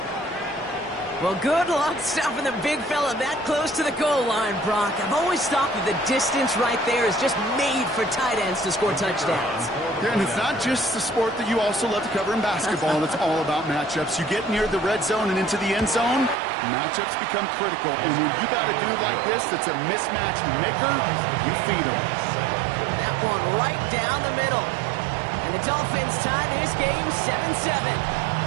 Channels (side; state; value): left; drops out; at 16.4 s